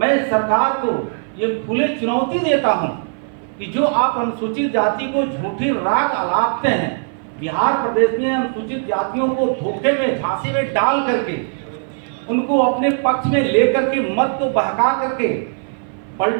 सरकार को ये खुले चुनौती देता हूं कि जो आप अनुसूचित जाति को झूठी राग अलापते हैं, बिहार प्रदेश में अनुसूचित जातियों को धोखे में, झांसे में डाल करके उनको अपने पक्ष में लेकर के मत को बहका करके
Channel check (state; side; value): silent; left; 57 dB below the other